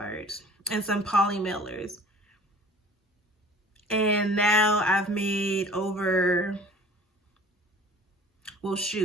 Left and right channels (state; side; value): normal; both; correlation 0.47